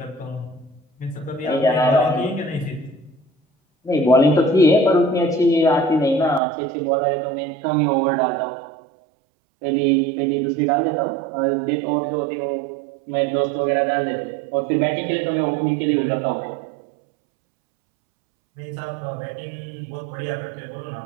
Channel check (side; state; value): left; drops out; at 6.4 s